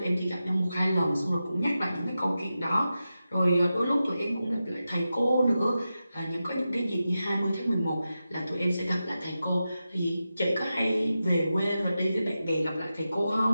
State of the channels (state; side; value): inverted; both; correlation -0.91